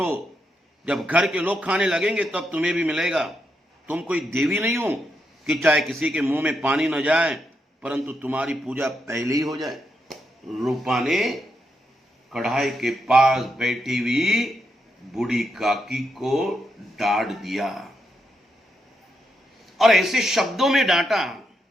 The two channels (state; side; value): normal; both; correlation 0.82